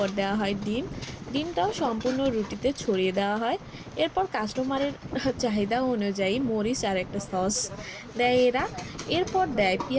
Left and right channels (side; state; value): both; identical; correlation 1.00